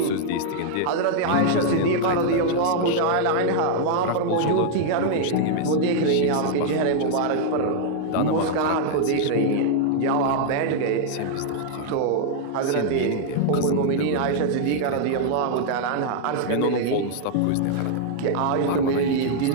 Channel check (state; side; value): different; both; correlation -0.01